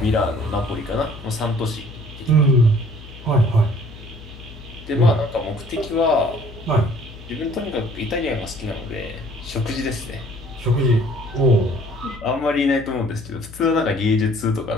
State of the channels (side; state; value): left; noise; hum, 16 dB below the sound